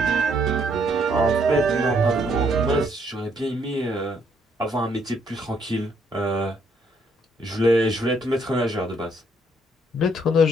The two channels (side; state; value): both; normal; correlation 0.69